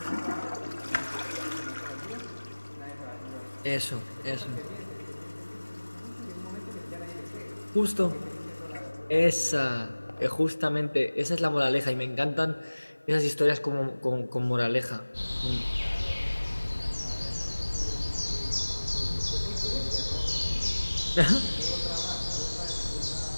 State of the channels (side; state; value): both; inverted; correlation -1.00